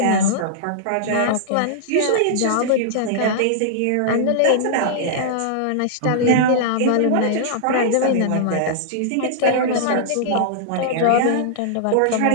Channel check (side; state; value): both; different; correlation -0.01